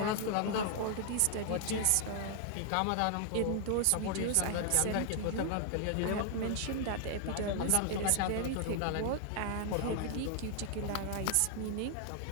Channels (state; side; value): different; both; correlation 0.00